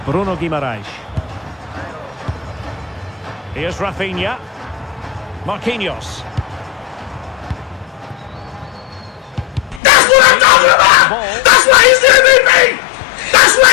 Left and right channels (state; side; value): drops out; right; at 9.8 s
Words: Bruno Guimaraes. Here's Rafinha. Marquinhos. That's what I'm talking about! That's why he's the MVP! That's why